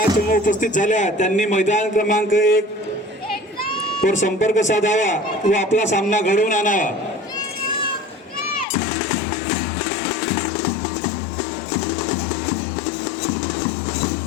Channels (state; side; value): drops out; right; at 8.7 s